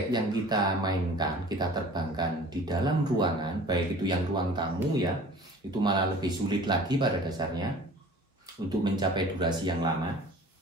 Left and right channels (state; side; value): normal; both; correlation 0.44